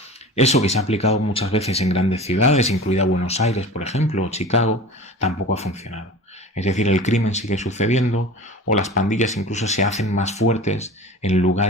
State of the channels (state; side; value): normal; both; correlation 0.37